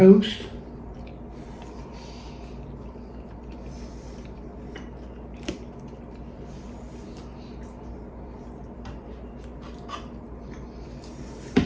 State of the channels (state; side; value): identical; both; correlation 1.00